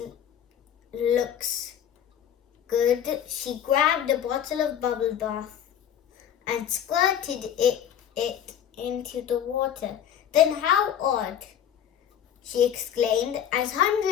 good." She grabbed a bottle of bubble bath and squirted it into the water. "Then how odd," she exclaimed, as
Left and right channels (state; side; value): quieter; right; 9.5 dB